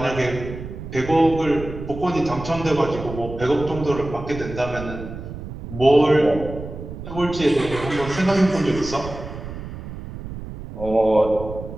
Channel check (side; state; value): right; noise; rumble, 10 dB below the sound